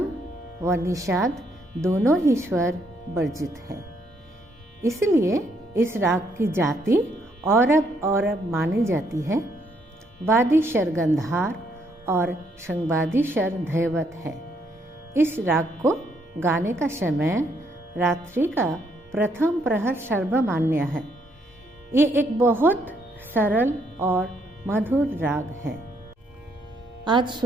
व निषाद दोनों ही स्वर वर्जित है, इसलिए इस राग की जाति औरब मानी जाती है। वादी शर गंधार और संवादी शर धैवत है। इस राग को गाने का समय रात्रि का प्रथम प्रहर सर्वमान्य है। ये एक बहुत सरल और मधुर राग है। आज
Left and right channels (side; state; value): both; normal; correlation 0.72